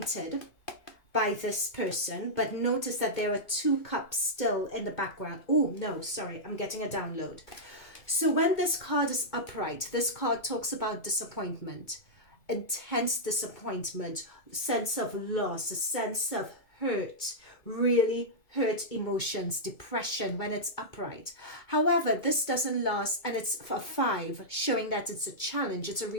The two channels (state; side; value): late; right; 2.2 ms